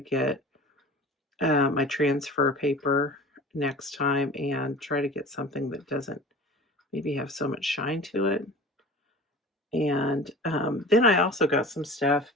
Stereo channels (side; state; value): both; normal; correlation 0.39